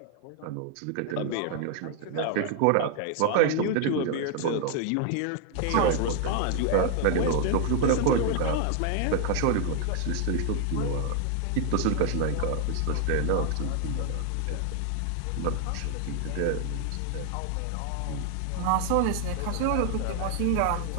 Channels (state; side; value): different; both; correlation 0.00